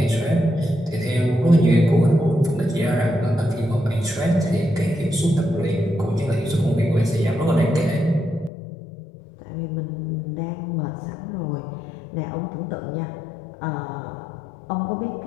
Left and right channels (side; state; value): right; drops out; at 8.5 s